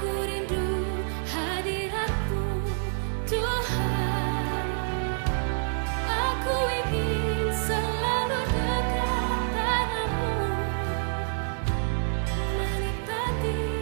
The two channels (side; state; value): left; silent; digital silence